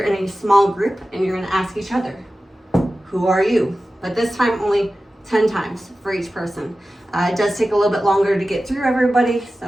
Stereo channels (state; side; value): normal; both; correlation 0.95